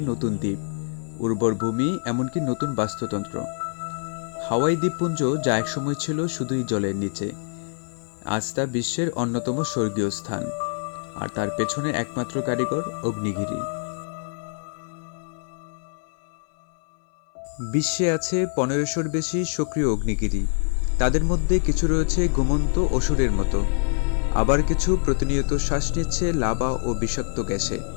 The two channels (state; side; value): silent; right; 60 dB below the other